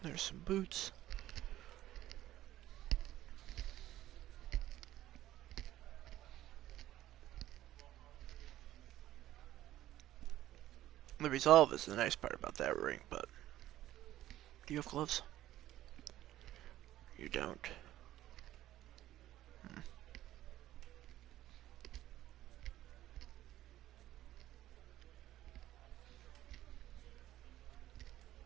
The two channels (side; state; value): left; quieter; 13.9 dB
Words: There's some boots. The resolve is the nice part about that ring, but do you have gloves? You don't.